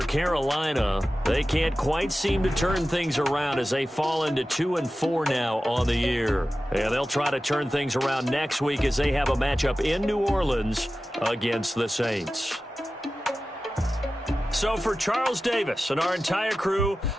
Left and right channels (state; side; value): normal; both; correlation 0.95